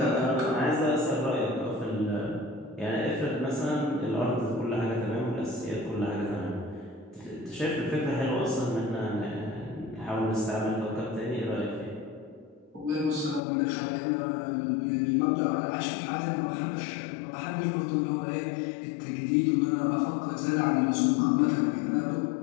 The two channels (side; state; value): right; drops out; at 13.4 s